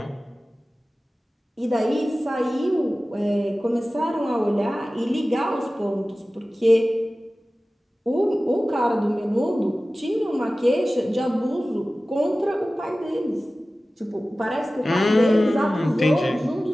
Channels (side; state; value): both; normal; correlation 0.96